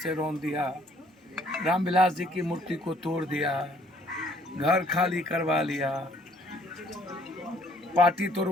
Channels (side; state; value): both; normal; correlation 0.62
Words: रौंद दिया, रामविलास जी की मूर्ति को तोड़ दिया, घर खाली करवा लिया, पार्टी